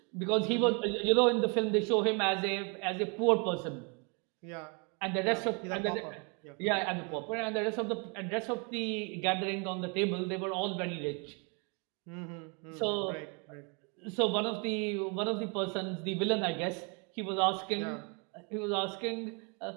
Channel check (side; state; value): left; quieter; 34.2 dB